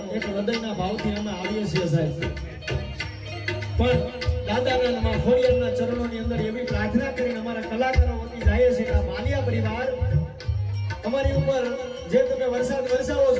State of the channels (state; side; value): identical; both; correlation 1.00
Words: એક હૃદયના ભાવથી અમે આવીએ છીએ સાહેબ પણ દાદાના ખોડિયારના ચરણોની અંદર એવી પ્રાર્થના કરીને અમારા કલાકારો વતી જાય છે કે આ માલિયા પરિવાર અમારી ઉપર જે તમે વરસાદ વરસાવો